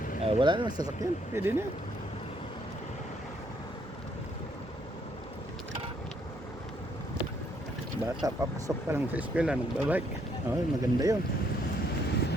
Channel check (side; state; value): both; normal; correlation 0.70